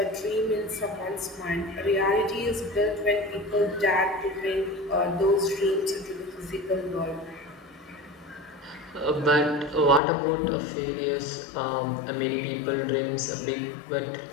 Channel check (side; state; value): right; drops out; at 10.0 s